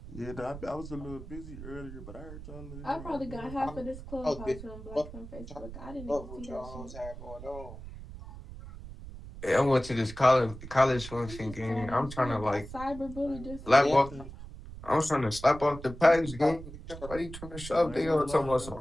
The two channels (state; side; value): noise; right; rumble, 13 dB below the sound